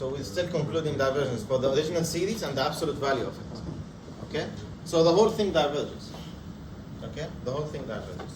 we're still concluding divergence for the original series and the absolute value of it. Okay? So the whole thing diverges. Okay? The whole thing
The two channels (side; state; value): both; identical; correlation 1.00